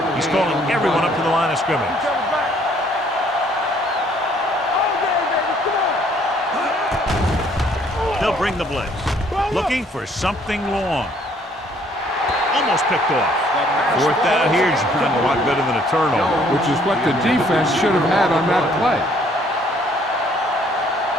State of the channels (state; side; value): normal; both; correlation 0.62